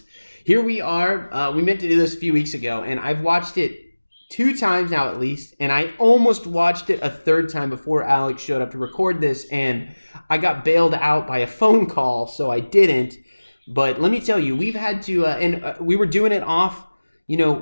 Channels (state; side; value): inverted; both; correlation -1.00